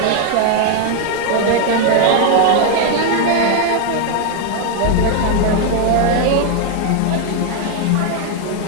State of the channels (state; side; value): different; both; correlation 0.00